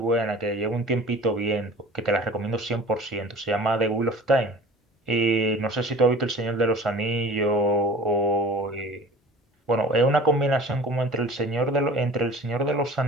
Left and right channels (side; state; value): both; normal; correlation 0.43